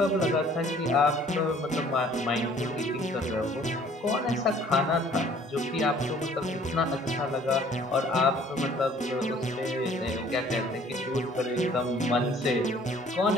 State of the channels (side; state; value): both; normal; correlation 0.55